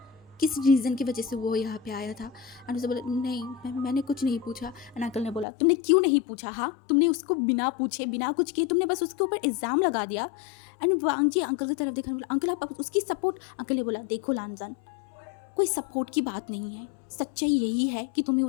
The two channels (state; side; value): drops out; right; at 5.5 s